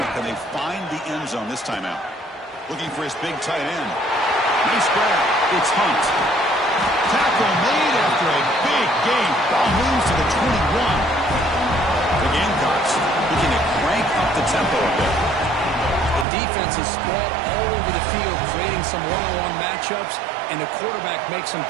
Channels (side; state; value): left; drops out; at 16.2 s